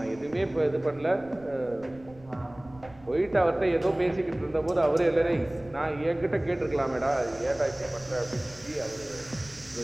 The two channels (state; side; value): noise; right; rumble, 23 dB below the sound